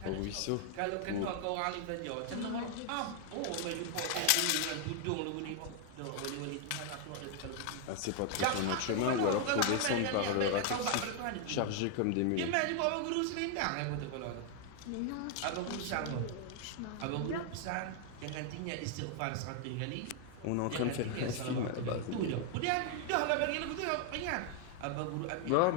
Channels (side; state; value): both; different; correlation 0.00